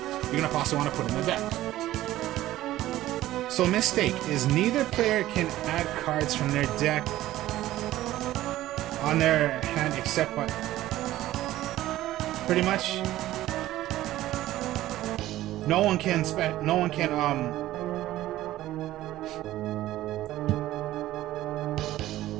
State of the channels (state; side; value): quieter; left; 14.9 dB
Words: going to also want to put in the deck. So Mistake is neither player can add cards from their deck on their hand except by... Pretty much. No one can